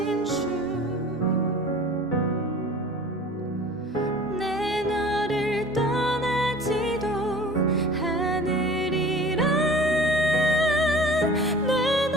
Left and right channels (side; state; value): both; normal; correlation 0.43